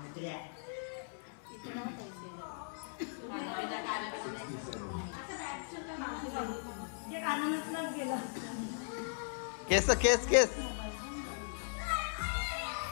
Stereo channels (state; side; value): silent; right; 53 dB below the other